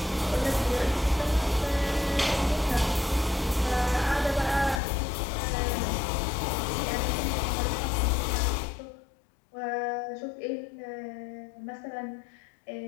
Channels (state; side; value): drops out; right; at 4.8 s